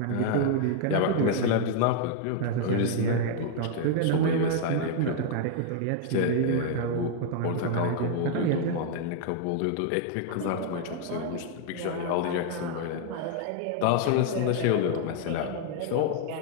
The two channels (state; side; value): different; both; correlation 0.00